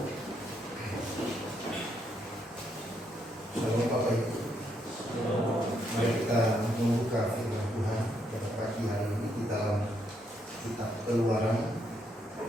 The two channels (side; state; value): both; normal; correlation 0.76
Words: Shalom Bapak Ibu. Mari kita membuka firman Tuhan pada pagi hari ini di dalam kitab Keluaran